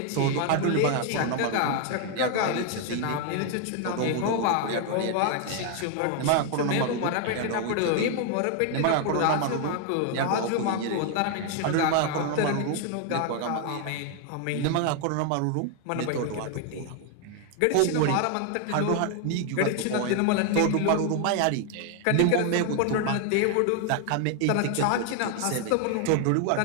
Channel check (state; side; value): different; both; correlation 0.00